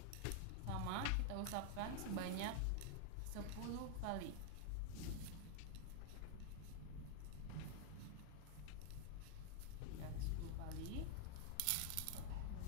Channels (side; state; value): both; different; correlation 0.00